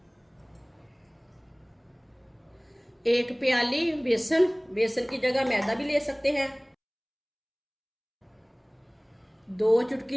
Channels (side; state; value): both; identical; correlation 1.00